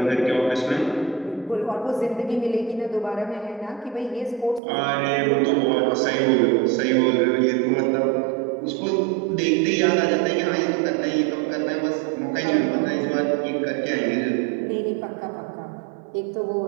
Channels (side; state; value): left; drops out; at 4.6 s